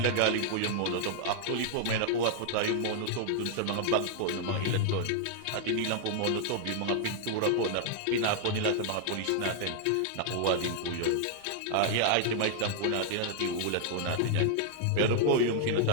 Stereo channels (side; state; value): both; different; correlation 0.00